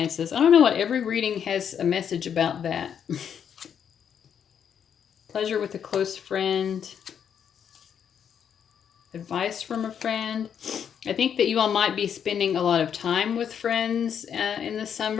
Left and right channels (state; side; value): quieter; right; 8.2 dB